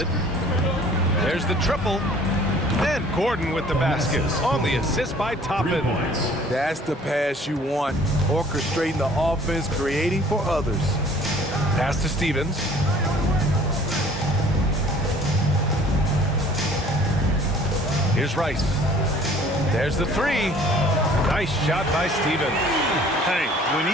There's the triple. And Gordon with the basket on the assist by Toppin. That's the pass you want. Orchestrating the offense, creating for others. Pass to Stevens. Here's Rice. There's the 3. Nice shot by Stevens. Hey, when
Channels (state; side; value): normal; both; correlation 0.53